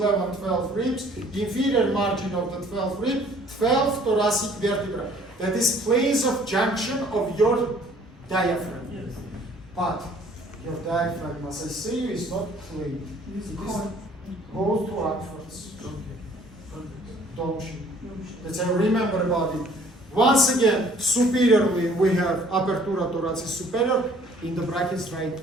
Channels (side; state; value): both; normal; correlation 0.57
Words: 12 ribs, inferior margin of the 12th rib, 12 thoracic vertebra. That is place of junction of your diaphragm. Yes. But your diaphragm, as I say, is not plain. It goes to upwards. Don't you? Let's say remember about it. Once again, superiorly we have apertura thoracis superior. In the brackets, right,